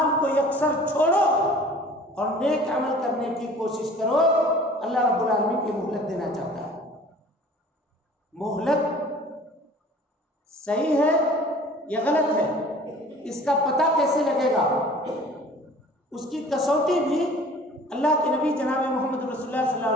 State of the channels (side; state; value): both; normal; correlation 0.48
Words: کو یکسر چھوڑو اور نیک عمل کرنے کی کوشش کرو۔ اللہ رب العالمین کی مہلت دینا چاہتا ہے۔ مہلت صحیح ہے یا غلط ہے، اس کا پتہ کیسے لگے گا؟ اس کی کسوٹی بھی اللہ کے نبی جناب محمد رسول اللہ صلی اللہ